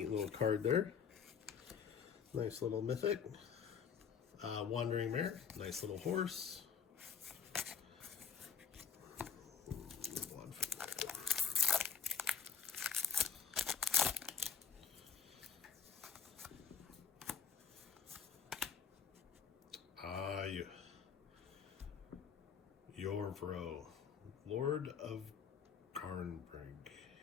little card there. Nice little mythic. Wandering Mare. Nice little horse. Yorvro, Lord of Garnbrig.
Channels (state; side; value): quieter; right; 6.8 dB